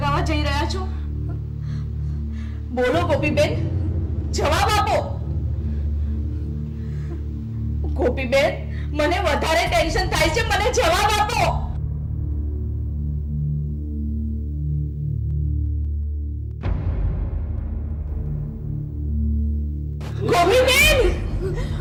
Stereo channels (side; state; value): both; identical; correlation 1.00